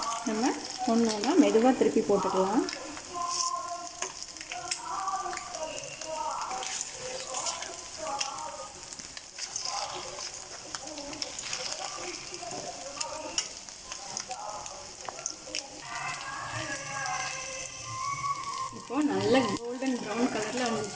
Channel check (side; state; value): both; identical; correlation 1.00